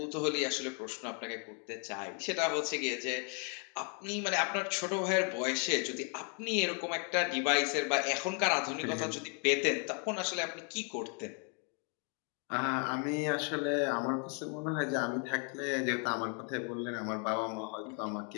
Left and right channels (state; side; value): quieter; right; 38.5 dB